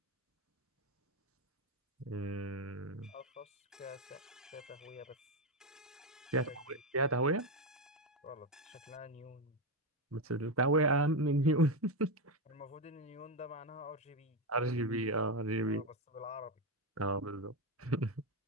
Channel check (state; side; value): normal; both; correlation 0.10